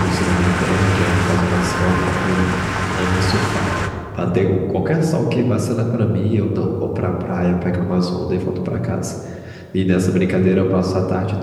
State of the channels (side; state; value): both; identical; correlation 1.00